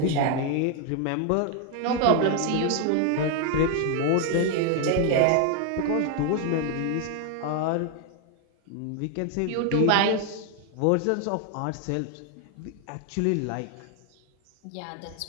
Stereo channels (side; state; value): both; different; correlation 0.00